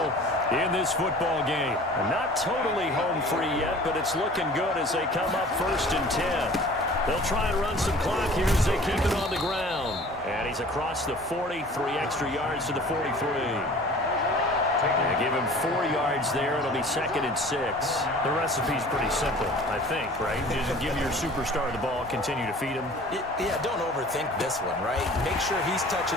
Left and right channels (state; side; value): normal; both; correlation 0.46